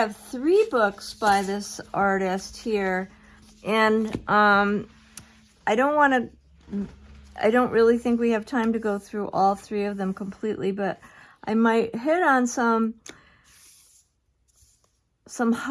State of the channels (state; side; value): identical; both; correlation 1.00